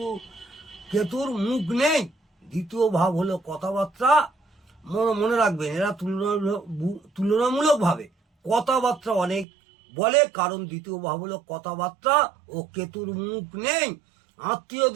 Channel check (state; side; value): drops out; left; at 9.5 s